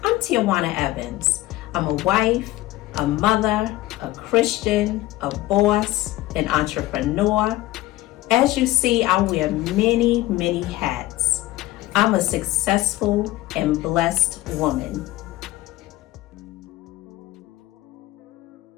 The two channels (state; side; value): quieter; right; 16.8 dB